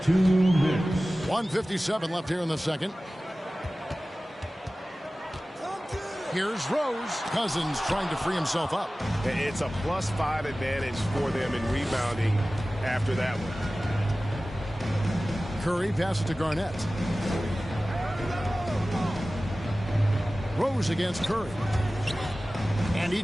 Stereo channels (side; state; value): both; normal; correlation 0.97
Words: 2 minutes. 1:57 left here in the second. Here's Rose. Cousins trying to free himself up. It's a +5 advantage for them in rebounding after that one. Curry passes to Garnett. Rose against Curry. And he